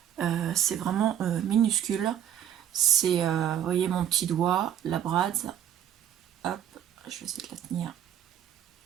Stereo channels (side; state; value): left; quieter; 10.3 dB